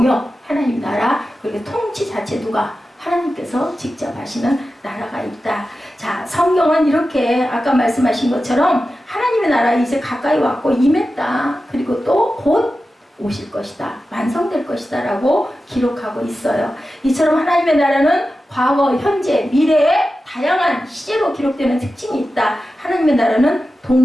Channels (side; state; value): both; normal; correlation 0.93